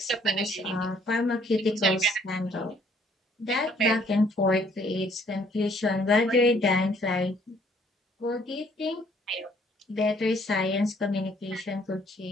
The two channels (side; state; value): both; normal; correlation 0.63